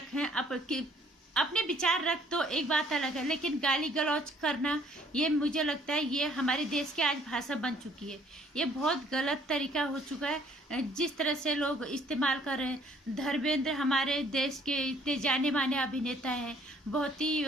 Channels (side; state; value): both; normal; correlation 0.61